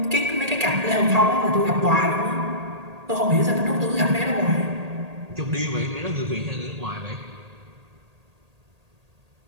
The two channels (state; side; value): late; left; 1.8 ms